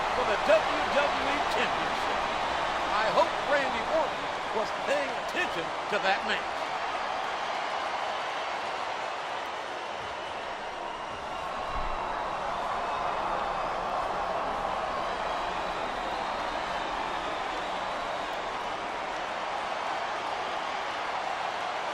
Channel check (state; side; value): identical; both; correlation 1.00